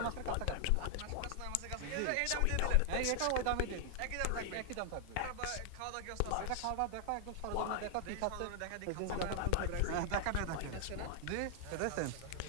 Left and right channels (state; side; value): different; both; correlation 0.00